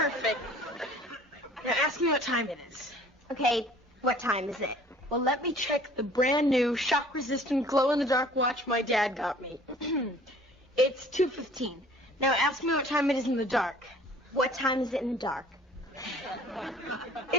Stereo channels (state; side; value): normal; both; correlation 0.52